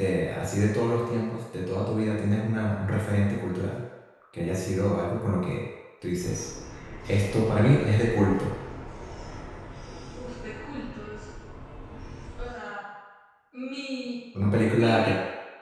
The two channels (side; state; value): both; identical; correlation 1.00